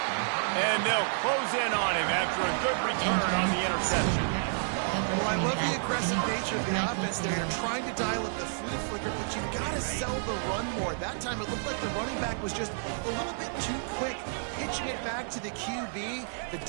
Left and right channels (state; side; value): silent; left; 58 dB below the other